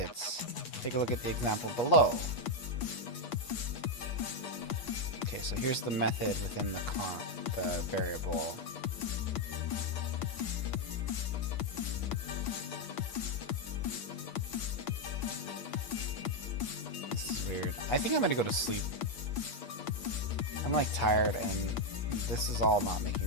Take a look at the example below. Okay, so here's the method within the variable. This is weird. I think I'm gonna go to sleep. I'm like tired and this is all not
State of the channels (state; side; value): late; right; 8.3 ms